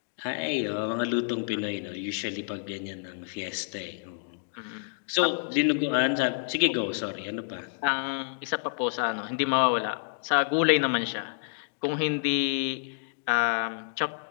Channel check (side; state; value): right; silent; digital silence